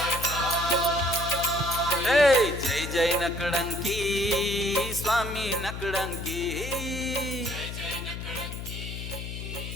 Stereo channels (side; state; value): left; noise; hum, 7 dB below the sound